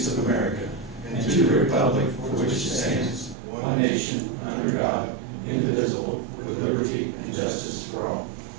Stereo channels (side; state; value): left; drops out; at 3.4 s